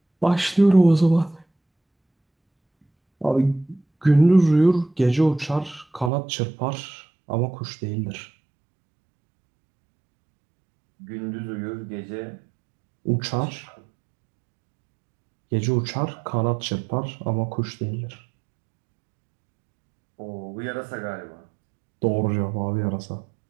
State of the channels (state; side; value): drops out; left; at 6.1 s